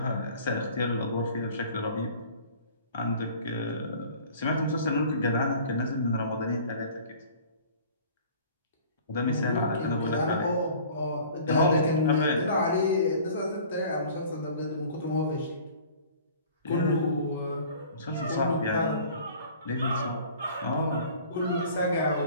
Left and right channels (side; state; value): both; inverted; correlation -0.47